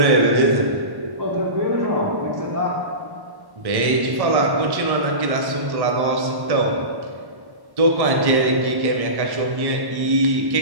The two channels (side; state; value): left; late; 1.1 ms